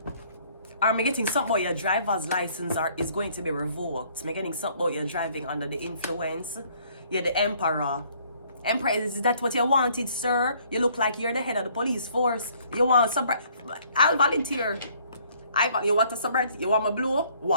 Am I getting something about your driver's license is going to be revoked? Am I getting something about your driving under the influence? Yeah, the Emperor. Emperor, is that what you wanted, sir? You look like you're the head of the police force. You want sobriety? I'll volunteer. You want a sobriety? You want my blue?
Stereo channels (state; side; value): inverted; both; correlation -0.62